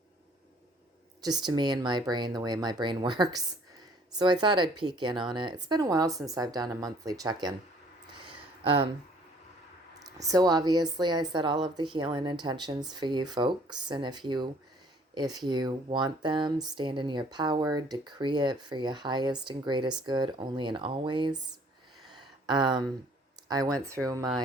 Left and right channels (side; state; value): both; normal; correlation 0.57